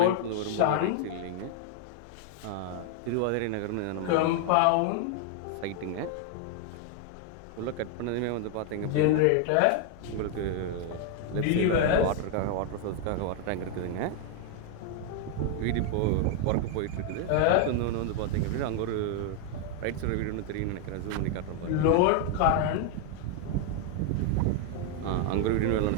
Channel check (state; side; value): different; both; correlation 0.00